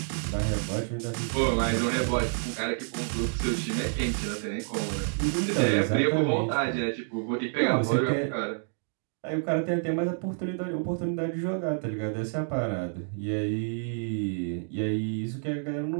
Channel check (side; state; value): left; silent; 59 dB below the other